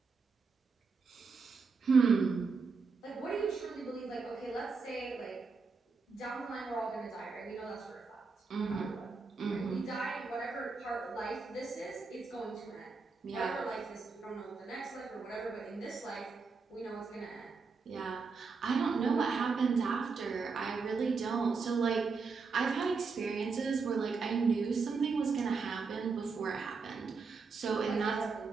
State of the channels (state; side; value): quieter; left; 4.7 dB